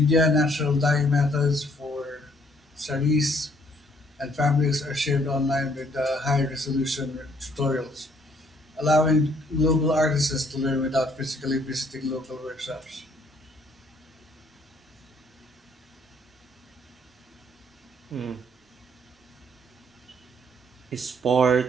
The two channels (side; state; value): both; normal; correlation 0.65